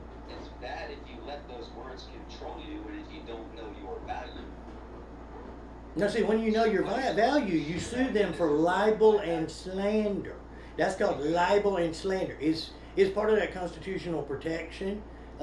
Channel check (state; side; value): identical; both; correlation 1.00